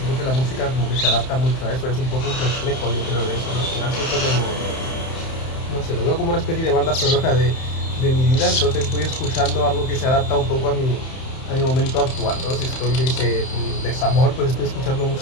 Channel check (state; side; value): late; right; 31 ms